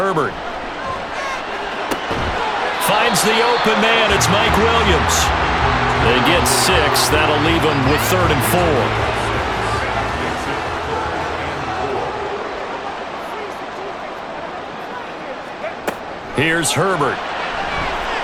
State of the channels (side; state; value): both; identical; correlation 1.00